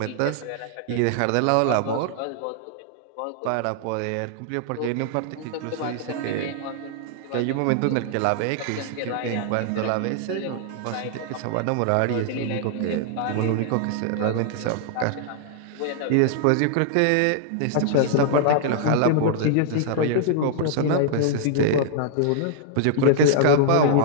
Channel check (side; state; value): both; different; correlation -0.01